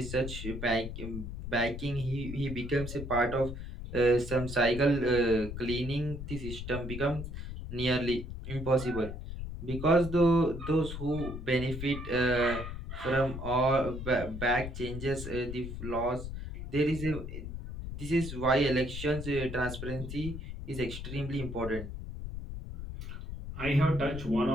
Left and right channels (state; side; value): noise; left; rumble, 8 dB below the sound